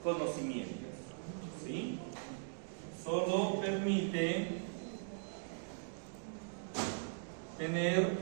conocimientos, ¿sí? Solo permite tener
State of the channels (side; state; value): left; silent; digital silence